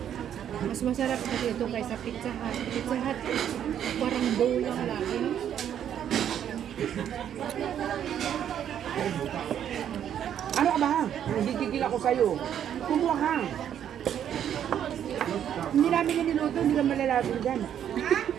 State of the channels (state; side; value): quieter; left; 9.7 dB